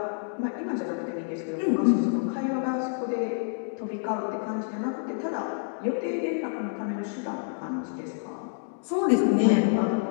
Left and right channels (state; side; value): silent; right; digital silence